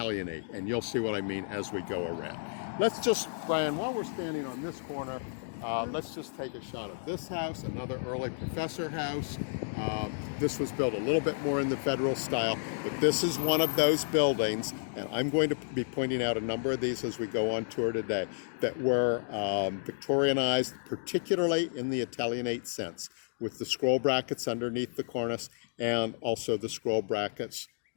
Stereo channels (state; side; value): silent; right; digital silence